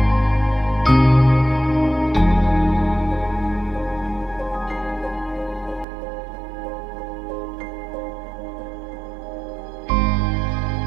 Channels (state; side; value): drops out; left; at 5.9 s